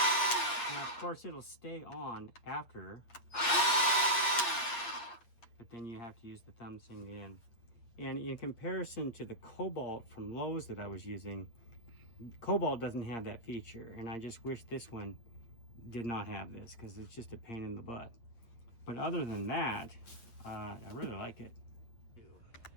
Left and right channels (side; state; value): right; late; 8.5 ms